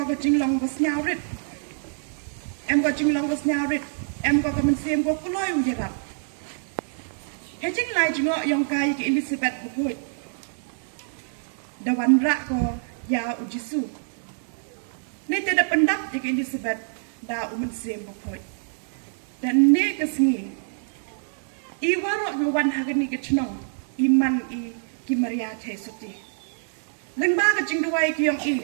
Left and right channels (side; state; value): left; silent; 57 dB below the other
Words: kecing long bos nyawrit. Go kecing long bos nyawrit. Go ke mensiem go kuloi ujarap. Kecing lai jengok yang kai ke Elizabeth bukut. Dawan rak ko ya ujisu. Ni tidak pendap ke Elizabeth da umen sem bukut. Dan ni kesengi. I warok ngawan hagani ke cenong. Iman I ki Maria Tesuti. Lengba kecing duai ki yang